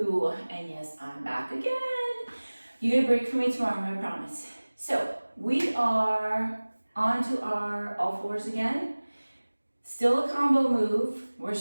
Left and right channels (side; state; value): both; inverted; correlation -1.00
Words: and yes, I'm back again. You get a break from me tomorrow, I promise. So we are on to our all fours again. Still a combo move. We're